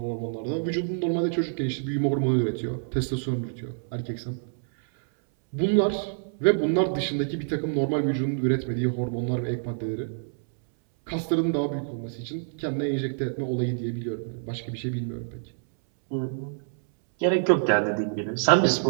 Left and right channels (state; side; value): silent; left; 60 dB below the other